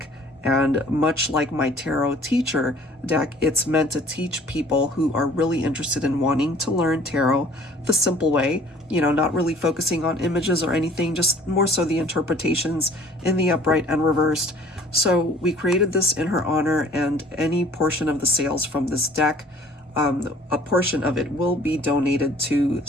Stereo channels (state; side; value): normal; both; correlation 0.52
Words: and much like my tarot teacher deck, it's meant to teach people who are really interested in wanting to learn tarot the simple way, you know, not really focusing on images or anything, just more so the interpretations in the upright and reversed. So we created this in her honor, and any portion of the sales from this deck, a portion of it will be donated to